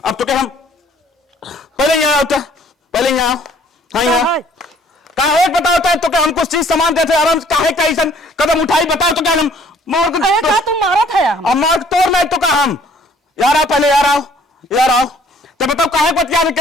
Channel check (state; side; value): normal; both; correlation 0.58